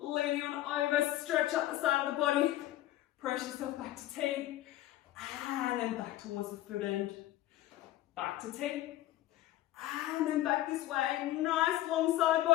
on over, stretch up the side of the body, press yourself back to T, and then back towards the foot end. Back to T, and then back this way. Nice long side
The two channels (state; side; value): quieter; right; 14.6 dB